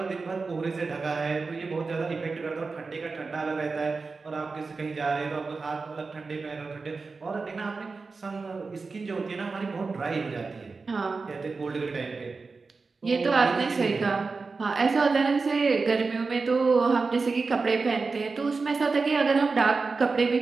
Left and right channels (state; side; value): quieter; left; 4.3 dB